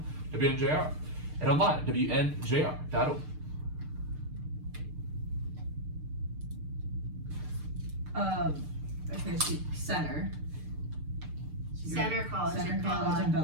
WNJR, and online, WNJR.org. Okay, center. Center College. Center in College Bella. in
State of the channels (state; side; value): late; left; 6.6 ms